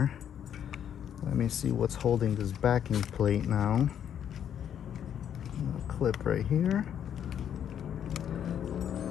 Let me see what's holding this backing plate now. A clip right here.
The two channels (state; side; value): quieter; right; 9.3 dB